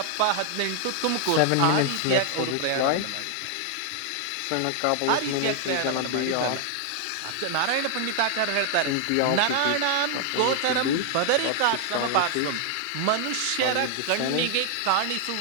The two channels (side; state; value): both; different; correlation 0.00